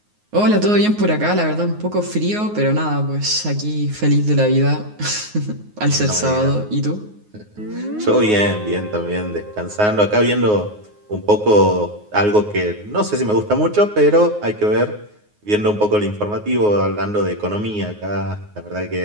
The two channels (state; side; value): late; left; 9.5 ms